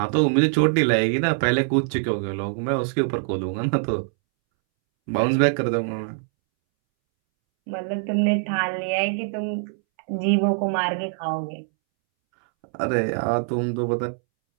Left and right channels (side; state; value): left; silent; 63 dB below the other